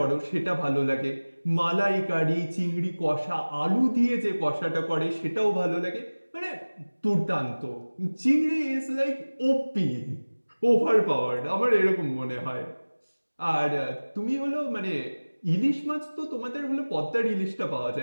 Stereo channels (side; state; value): both; inverted; correlation -1.00